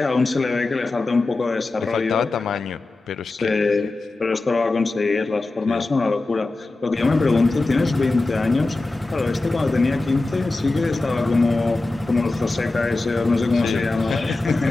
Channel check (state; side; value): quieter; right; 3.2 dB